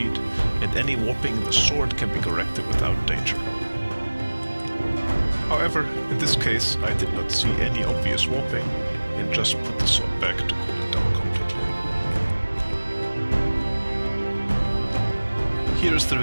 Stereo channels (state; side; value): inverted; both; correlation -1.00